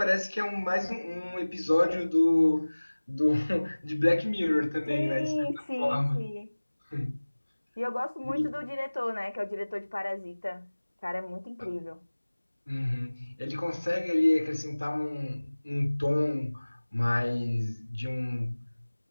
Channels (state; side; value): inverted; both; correlation -1.00